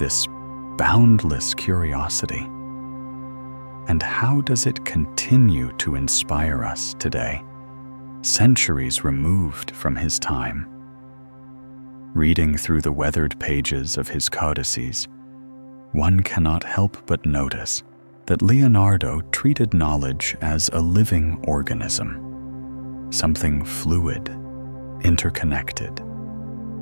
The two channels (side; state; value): both; inverted; correlation -1.00